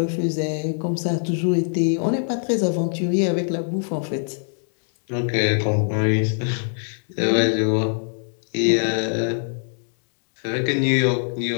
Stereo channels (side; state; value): right; silent; digital silence